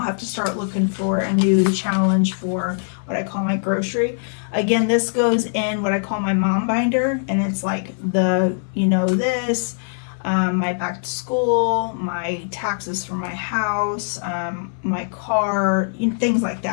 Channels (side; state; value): right; silent; 60 dB below the other